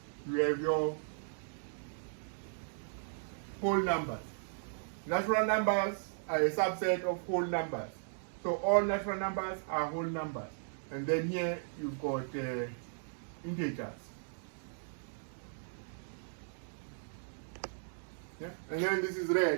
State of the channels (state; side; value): silent; left; digital silence